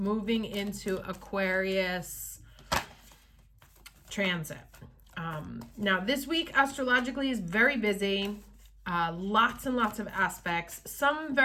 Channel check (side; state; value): both; identical; correlation 1.00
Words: into Aquarius transit. Now this week astrologically is very busy. Lots and lots of aspects, some